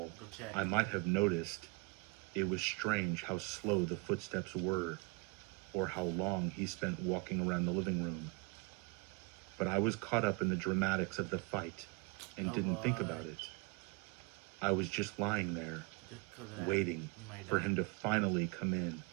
I might have noticed. It was strange how slow the footsteps were, or how long he spent walking around the living room. But I was caught up in the dramatics of the fight, and didn't think about it. I was just lying there, Just 'cause of that, waiting you might for die. him to finally come in.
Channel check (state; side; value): quieter; left; 28.7 dB